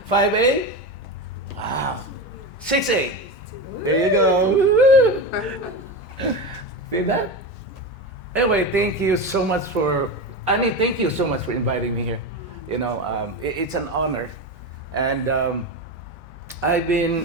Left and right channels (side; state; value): both; normal; correlation 0.20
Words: 5A? Wow. 6A? There you go. See that? Anyway, thank you so much for, Annie, thank you so much for inviting me here. You know, it's an honor. And I've